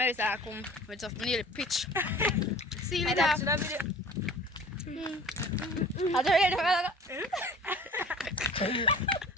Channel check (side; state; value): both; normal; correlation 0.45